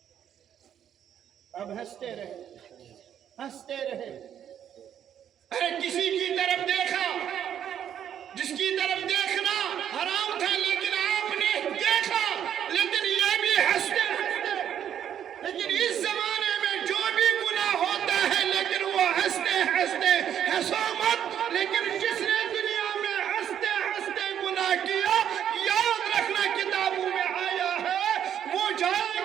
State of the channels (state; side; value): quieter; left; 9.6 dB